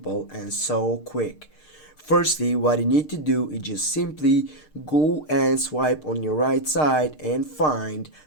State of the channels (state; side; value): late; right; 6.6 ms